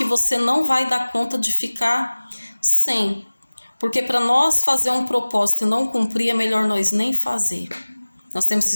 você não vai dar conta de ficar sem. Porque para nós fazer um propósito e não cumprir, é melhor nós nem fazer. Nós temos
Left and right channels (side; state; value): both; inverted; correlation -1.00